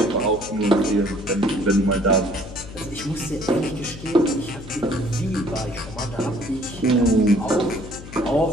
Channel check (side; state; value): left; noise; hum, 14 dB below the sound